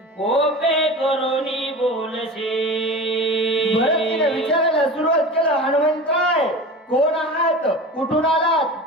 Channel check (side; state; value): both; normal; correlation 0.33